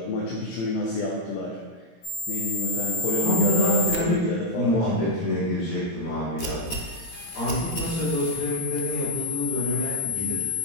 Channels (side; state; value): right; late; 18 ms